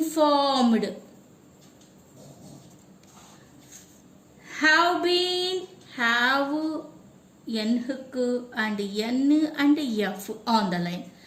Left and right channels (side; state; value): both; identical; correlation 1.00